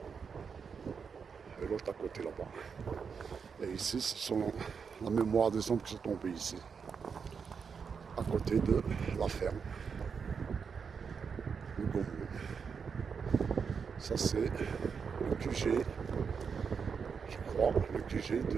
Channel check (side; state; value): left; quieter; 6.1 dB